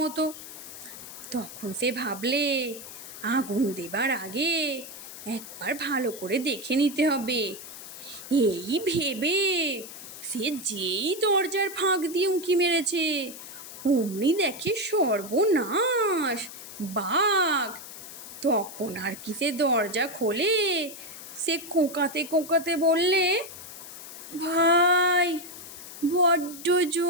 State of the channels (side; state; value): left; noise; hiss, 13 dB below the sound